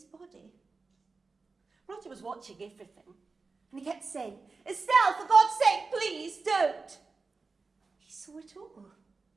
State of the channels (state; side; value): quieter; left; 4.1 dB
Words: body. Roger was watching everything, and he kept saying, "Estelle, for God's sake, please don't." He saw it all.